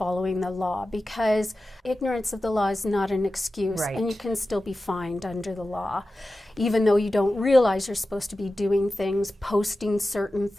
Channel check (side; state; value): both; normal; correlation 0.94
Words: the law, because ignorance of the law is not an excuse, Right. and you can still be fined under the law, even though you don't realize you're supposed to be doing things, posting certain